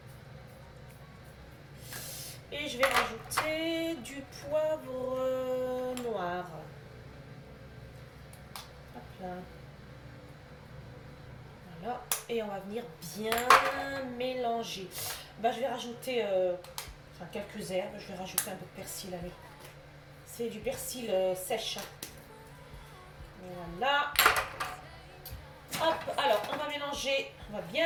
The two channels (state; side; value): identical; both; correlation 1.00